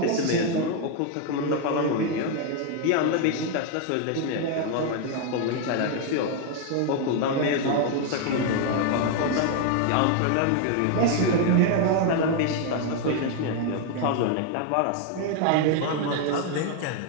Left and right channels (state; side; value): different; both; correlation 0.01